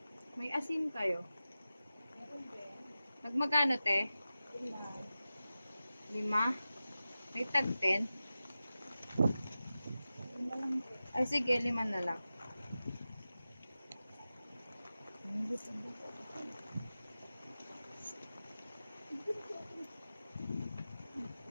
May asin kayo? Nagmagano, te? 5. May tag 10? Ay, sige, 5 na lang.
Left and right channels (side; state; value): both; inverted; correlation -0.94